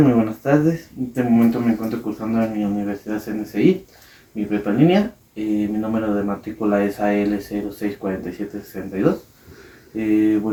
Muy buenas tardes. En este momento me encuentro cursando en mi universidad CNCI, mi prepa en línea. Mi número de matrícula es AL064762.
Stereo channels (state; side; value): identical; both; correlation 1.00